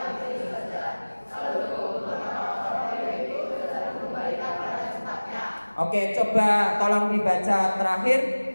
oke, coba tolong dibaca terakhir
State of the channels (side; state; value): both; inverted; correlation -1.00